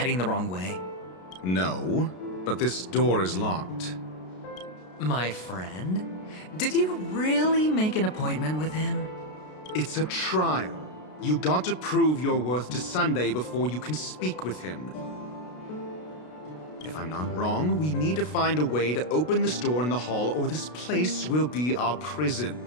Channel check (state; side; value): late; right; 33 ms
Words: the wrong way? No, but this door is locked. My friend? Did you really make an appointment with him? It's a trial. You got to prove your worth to Sunday before you can speak with him. If I'm not wrong, we need to find a way to open this door in the hall, or this place will be our prison.